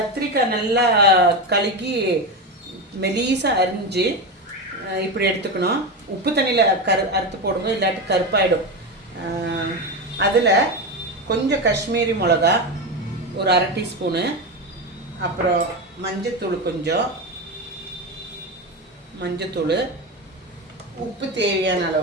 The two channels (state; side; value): normal; both; correlation 0.17